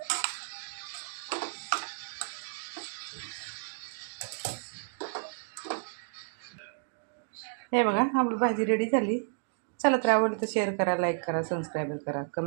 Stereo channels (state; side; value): silent; left; digital silence